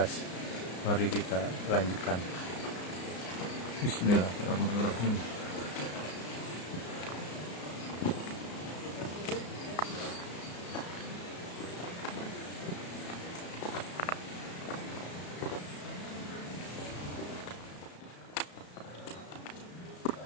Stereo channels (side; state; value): right; late; 34 ms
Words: Mari kita lanjutkan. Bismillahirrahmanirrahim.